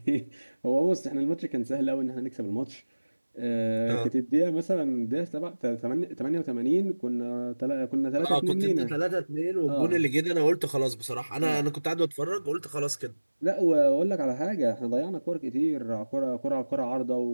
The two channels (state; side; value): inverted; both; correlation -1.00